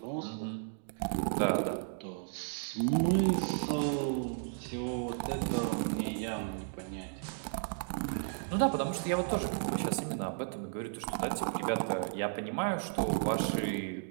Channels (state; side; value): silent; left; digital silence